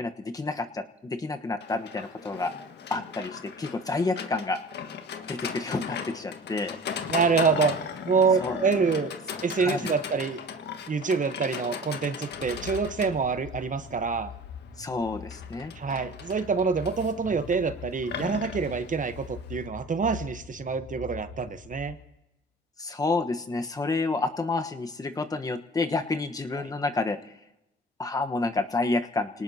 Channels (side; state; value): both; normal; correlation 0.42